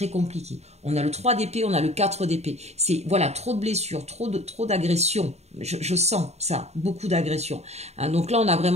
compliqué. On a le 3 d'épée, on a le 4 d'épée. C'est voilà, trop de blessures, trop d'agressions. Je sens ça, beaucoup d'agressions. Hein, donc là, on a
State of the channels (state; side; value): late; left; 0.31 ms